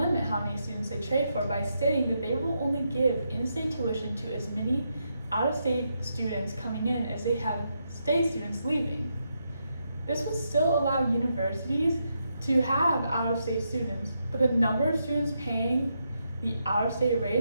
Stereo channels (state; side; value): inverted; both; correlation -0.82